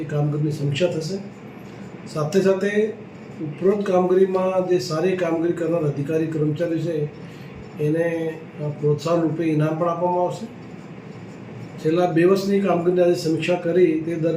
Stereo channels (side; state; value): both; identical; correlation 1.00